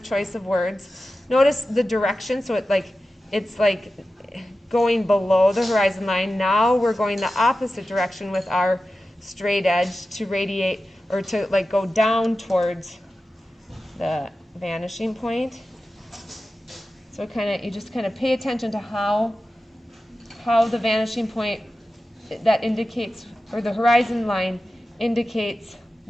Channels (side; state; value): both; normal; correlation 0.93